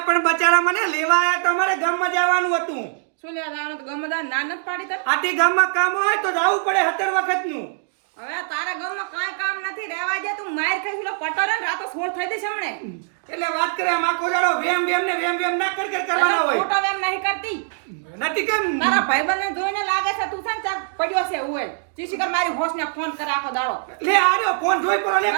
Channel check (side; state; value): left; silent; digital silence